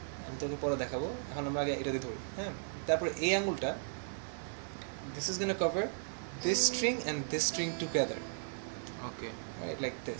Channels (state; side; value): silent; left; digital silence